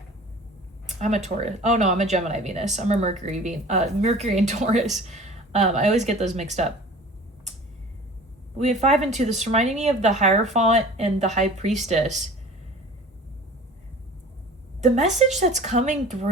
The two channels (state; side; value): normal; both; correlation 0.43